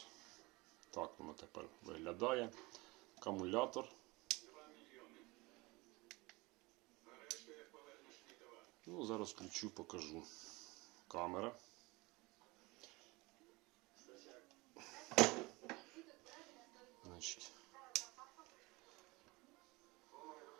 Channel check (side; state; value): left; quieter; 23.7 dB